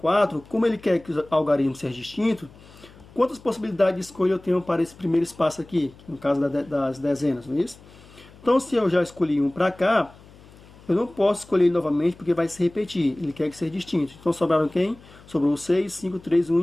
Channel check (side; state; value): left; noise; hum, 23 dB below the sound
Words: como ele quer que o algarismo seja distinto, quantas possibilidades de escolha eu tenho para esse primeiro espaço aqui, no caso das dezenas, não é isso? Então, se eu já escolhi um para cá, eu não posso escolher ele novamente porque vai se repetir. Ele quer que seja distinto. Então, sobraram quem? Sobrou o 6, 5, 3, 1